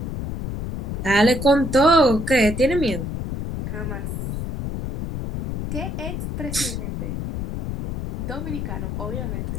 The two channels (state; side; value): noise; left; rumble, 4 dB below the sound